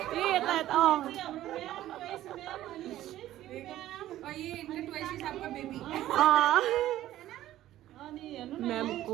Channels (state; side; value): quieter; left; 13.8 dB